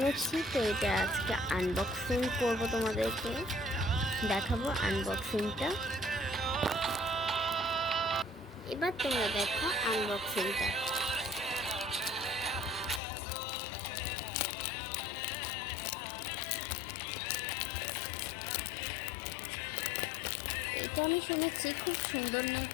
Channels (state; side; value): drops out; right; at 13.0 s